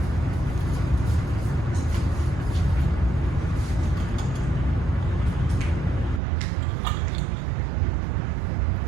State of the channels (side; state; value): left; drops out; at 6.2 s